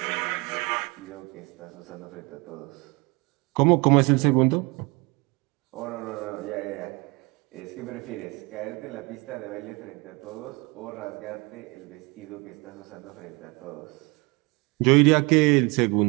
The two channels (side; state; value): left; quieter; 26.9 dB